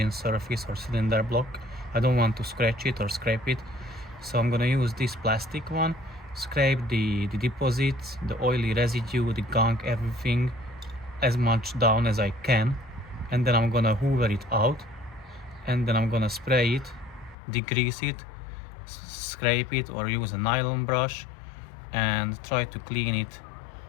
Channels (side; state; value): right; drops out; at 17.4 s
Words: surface or cylinder block. I don't want to scratch it or scrape it, so I'm gonna use this plastic one, scrape the deposits, the oily residue, the gunk, everything as much down as I can, and then I'm gonna hoover it out, and then I'm gonna spray it, degrease it, scrape it, or use a nylon brush and try to clean it